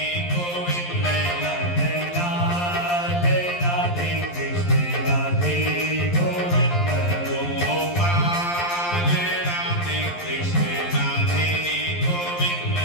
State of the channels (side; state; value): right; late; 11 ms